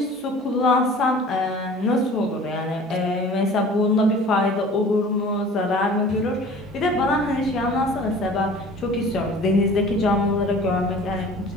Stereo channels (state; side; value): normal; both; correlation 0.45